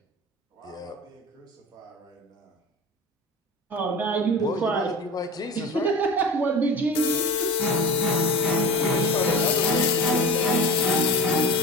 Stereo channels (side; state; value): both; normal; correlation 0.34